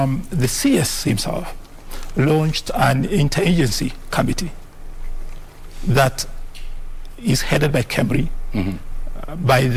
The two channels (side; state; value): both; identical; correlation 1.00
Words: CS himself launched an interagency committee that is headed by KEMRI, by